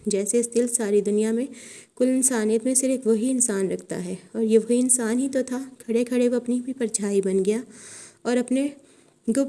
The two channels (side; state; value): both; identical; correlation 1.00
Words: جیسے اس دل ساری دنیا میں کل انسانیت میں صرف وہی انسان رکھتا ہے، اور یہ وہی انسان ہی تو تھا۔ کھڑے کھڑے وہ اپنی بھی پرچھائی بن گیا اور اپنے